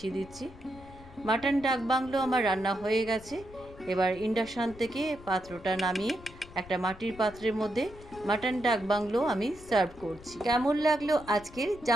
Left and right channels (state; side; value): noise; left; rumble, 19 dB below the sound